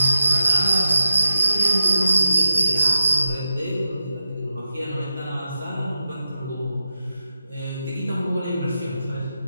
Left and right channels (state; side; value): inverted; both; correlation -0.89